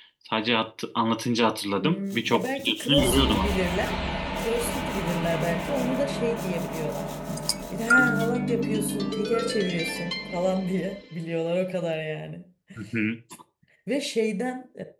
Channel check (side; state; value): both; identical; correlation 1.00